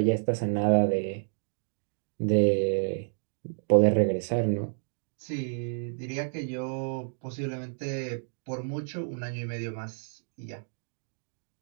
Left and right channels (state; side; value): silent; left; digital silence